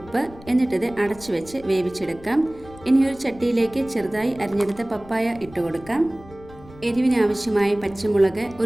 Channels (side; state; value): left; noise; rumble, 20 dB below the sound